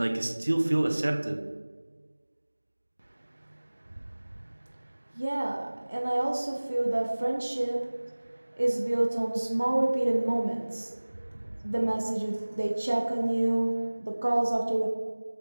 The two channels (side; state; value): both; inverted; correlation -1.00